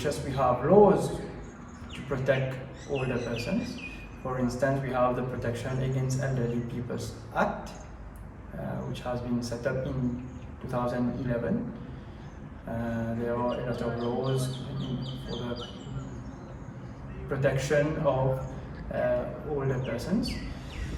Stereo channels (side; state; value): both; identical; correlation 1.00